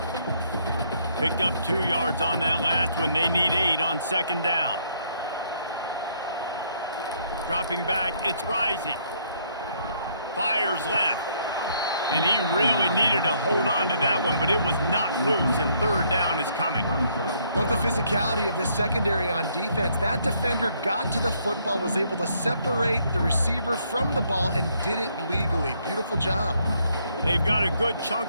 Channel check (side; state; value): both; inverted; correlation -0.69